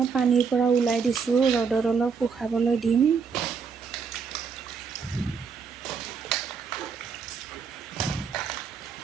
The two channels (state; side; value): quieter; left; 5.8 dB